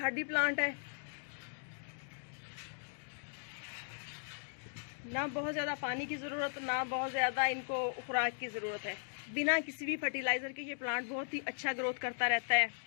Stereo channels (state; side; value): silent; right; digital silence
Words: प्लांट है, ना बहुत ज़्यादा पानी की ज़रूरत, ना बहुत ज़्यादा इनको खुराक की ज़रूरत है। बिना किसी भी फर्टिलाइज़र के ये प्लांट बहुत ही अच्छा ग्रोथ करता रहता है।